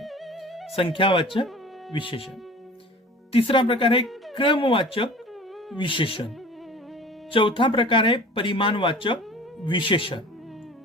संख्यावाचक विशेषण। तीसरा प्रकार है क्रमवाचक विशेषण। चौथा प्रकार है परिमाणवाचक विशेषण।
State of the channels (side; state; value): both; normal; correlation 0.42